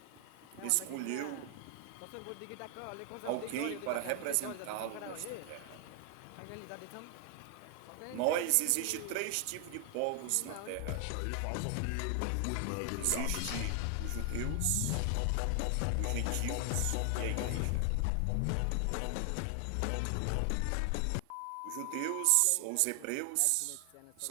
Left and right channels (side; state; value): both; different; correlation 0.00